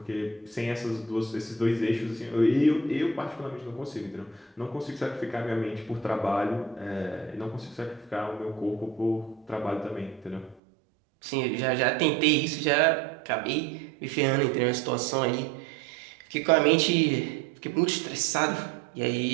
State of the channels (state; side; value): drops out; left; at 10.6 s